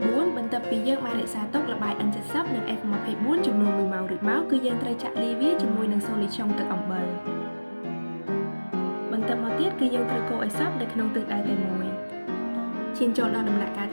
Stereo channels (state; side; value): inverted; both; correlation -1.00